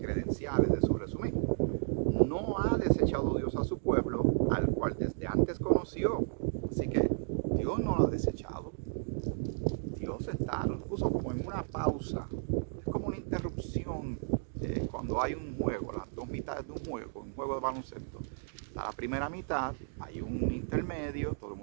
de su resumen. No ha desechado Dios a su pueblo, al cual desde antes conoció. Así que Dios no lo ha desechado. Dios lo puso como en una pausa. Es como una interrupción cuando hay un juego, las dos mitades de un juego de baloncesto. La primera mitad, hay un intermedio, todo el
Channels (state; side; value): silent; left; digital silence